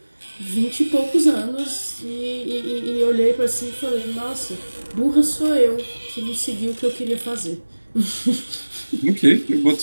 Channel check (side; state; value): both; inverted; correlation -1.00